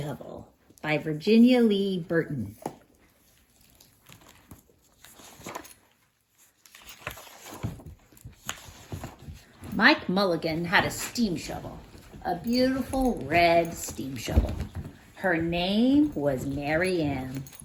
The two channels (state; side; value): identical; both; correlation 1.00